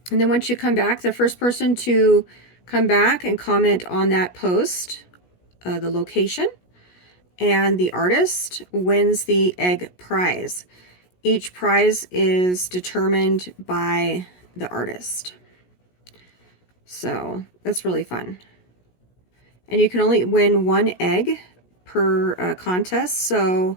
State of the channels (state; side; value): late; right; 17 ms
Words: And then once you come back, the first person to come back and comment on that post, the location, and the artist wins the egg prize. Each prize is determined by the artist. So that's really fun. And you can only win one egg per contest. So